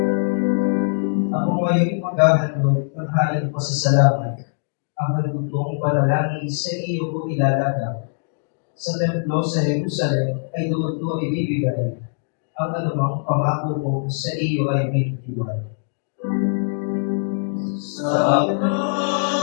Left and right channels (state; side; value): silent; right; digital silence